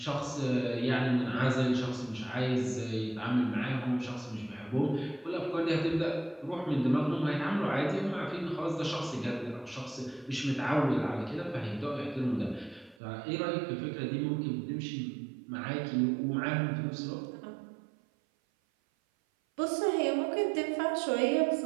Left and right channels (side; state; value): left; drops out; at 13.0 s